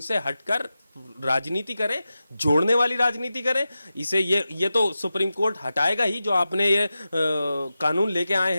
हटकर राजनीति करें, जोड़ने वाली राजनीति करें। इसे ये तो सुप्रीम कोर्ट हटाएगा ही। जो आपने ये कानून लेके आए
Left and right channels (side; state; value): both; inverted; correlation -0.93